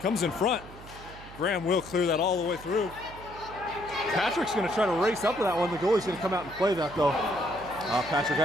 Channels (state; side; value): noise; right; hum, 17 dB below the sound